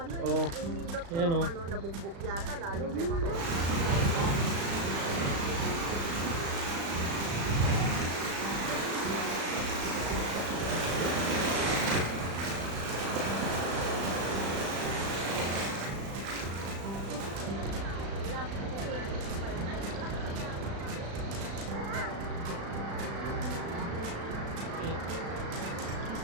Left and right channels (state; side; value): late; left; 36 ms